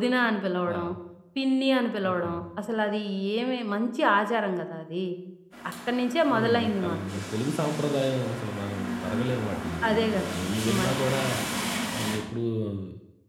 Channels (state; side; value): identical; both; correlation 1.00